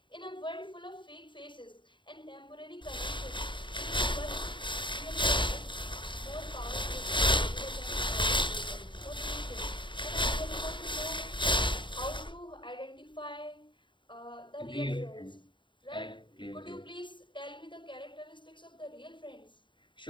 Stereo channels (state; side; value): late; right; 0.23 ms